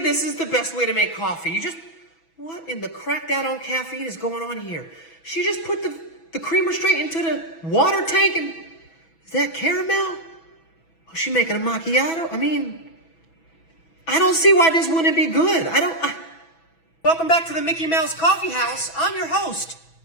is the best way to make coffee. You just... What in the cracked out on caffeine is going on here? She just put the creamer straight into the water tank and... Is that caramel? Oh, she making a macchiato? I mean... I don't see why this wouldn't be good. Welcome back to the Mickey Mouse Coffee House. I'm your host.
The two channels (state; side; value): late; right; 6.1 ms